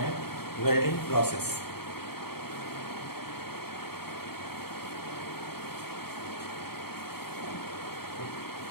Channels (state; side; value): late; right; 0.95 ms